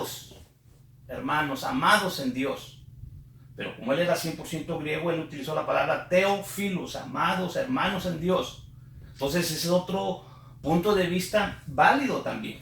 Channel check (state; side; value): identical; both; correlation 1.00